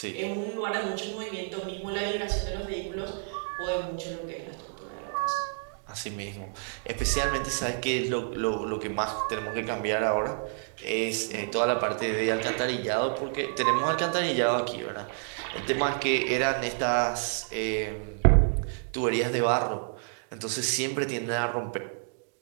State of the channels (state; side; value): silent; left; 58 dB below the other